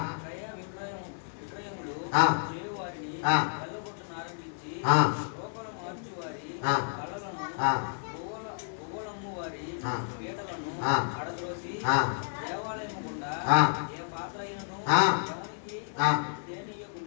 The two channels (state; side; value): silent; right; digital silence